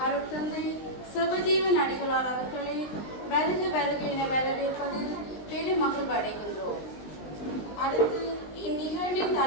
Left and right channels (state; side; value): late; right; 19 ms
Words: அருட்தந்தை சிவஜீவன் அடிகளார் அவர்களை வருக என வரவேற்பதில் பெருமகிழ் அடைகின்றோம். அடுத்து இந்நிகழ்வின்